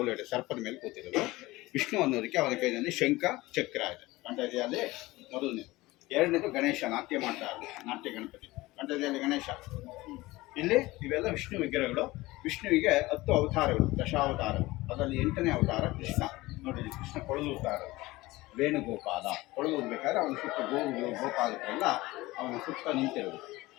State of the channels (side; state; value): right; quieter; 19.7 dB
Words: ಎಡೆ ಸರ್ಪದ ಮೇಲೆ ಕೂತಿರೋದು ವಿಷ್ಣು ಅನ್ನೋದಕ್ಕೆ ಅವನ ಕೈಯಲ್ಲಿ ಶಂಖ ಚಕ್ರ ಇದೆ. ಕಂಠದಲ್ಲಿ ಮೊದಲನೇ. ಎರಡನೇದು ಗಣೇಶ, ನಾಟ್ಯ ಮಾಡ್ತಾ ಇರೋದು, ನಾಟ್ಯ ಗಣಪತಿ. ಕಂಠದಲ್ಲಿ ಗಣೇಶ. ಇಲ್ಲಿ ಇವೆಲ್ಲ ವಿಷ್ಣು ವಿಗ್ರಹಗಳು. ವಿಷ್ಣುವಿಗೆ 10 ಅವತಾರಗಳು, ದಶಾವತಾರಗಳು. ಅದರಲ್ಲಿ 8ನೇ ಅವತಾರ ಕೃಷ್ಣ. ನೋಡಿ, ಕೃಷ್ಣ ಕೊಳಲೂತಾ ಇರೋದು, ವೇಣುಗೋಪಾಲ. ಕೊಳಲೂದ್ಬೇಕಾದ್ರೆ ಅವನ ಸುತ್ತ ಗೋಪಾಲಕರೆಲ್ಲ ಅವನ ಸುತ್ತ ನಿಂತಿರೋದು,